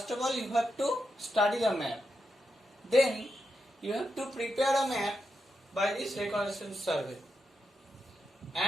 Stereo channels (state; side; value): normal; both; correlation 0.85